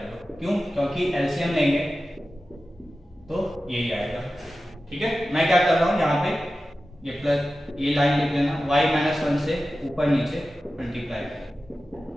लो, क्यों, क्योंकि एलसीएम लेंगे तो यही आएगा, ठीक है। मैं क्या कर रहा हूं यहाँ पे, ये प्लस, ये लाइन लिख लेना, y माइनस 1 से ऊपर नीचे मल्टीप्लाई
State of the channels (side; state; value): both; normal; correlation 0.94